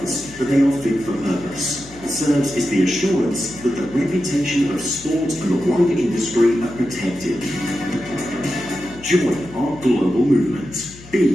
that they are fit for purpose. SERVS is the assurance that the reputation of sport and the wider industry are protected. Join our global movement.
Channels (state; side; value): noise; left; hum, 20 dB below the sound